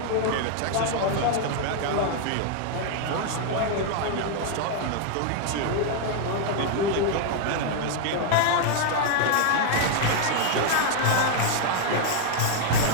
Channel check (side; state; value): both; different; correlation 0.00